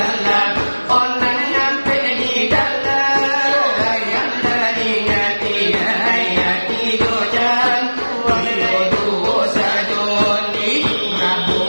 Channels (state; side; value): inverted; both; correlation -1.00